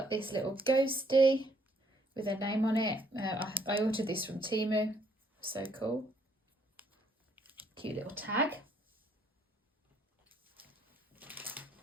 this little ghosty with her name on it. I ordered this from Temu. So cool. Cute little tag.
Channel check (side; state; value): both; normal; correlation 0.67